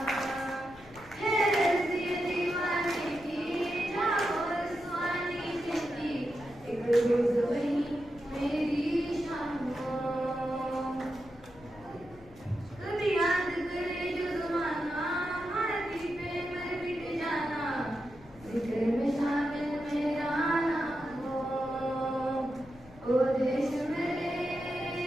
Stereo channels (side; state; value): left; noise; rumble, 22 dB below the sound